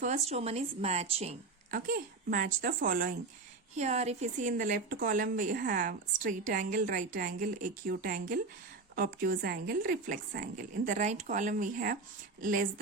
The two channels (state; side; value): quieter; left; 3.9 dB